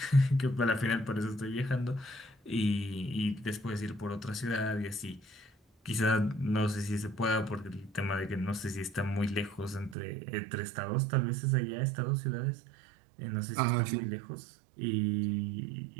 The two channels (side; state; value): left; drops out; at 10.0 s